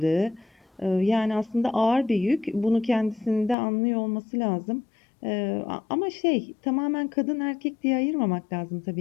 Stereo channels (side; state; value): right; drops out; at 3.6 s